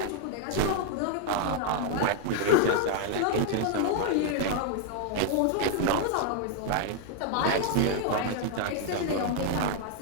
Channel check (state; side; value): different; both; correlation 0.00